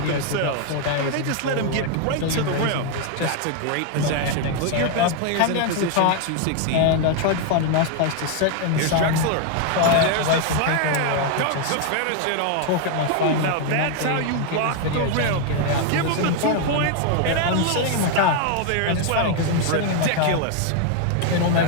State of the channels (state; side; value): different; both; correlation 0.00